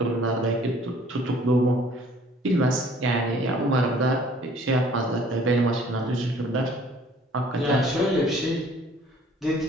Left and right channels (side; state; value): both; normal; correlation 0.55